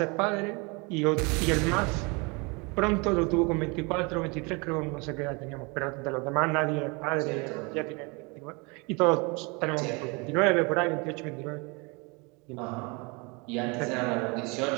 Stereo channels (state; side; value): quieter; left; 29.2 dB